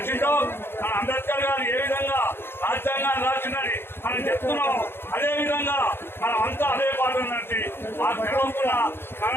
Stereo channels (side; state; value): right; late; 0.11 ms